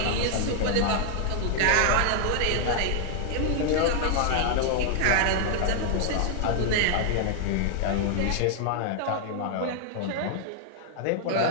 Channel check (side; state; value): both; different; correlation 0.00